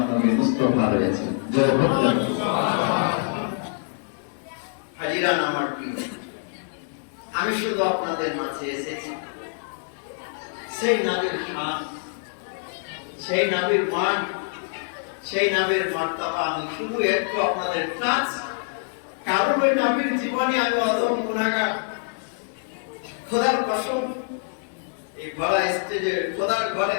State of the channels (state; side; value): silent; right; 61 dB below the other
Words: নবী মুস্তাফা রয়েছে। জয় হোক হাজিরান আমার প্রিয়, আমি শুধু আপনাদের মাঝে এসেছি সেই নবীর শান, সেই নবীর মান, সেই নবীর মর্তবা আমি শুধু একটু আপনাদের টাচ। কারণ ওই নবীর জীবনে আমি অধম গুনাহগার। খোদার কসম, এই বড় স্টেজে খোদার ঘরে